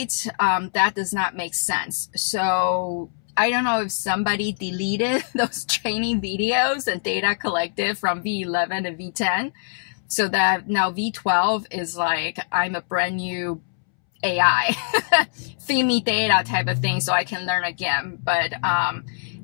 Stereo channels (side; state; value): right; silent; 63 dB below the other